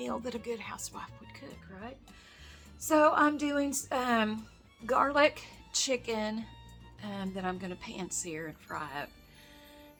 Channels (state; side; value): identical; both; correlation 1.00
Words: that a good housewife would cook, right? So I'm doing garlic chicken that I'm gonna pan sear and fry up.